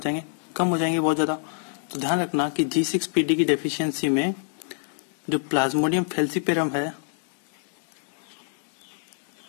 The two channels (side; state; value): right; silent; 61 dB below the other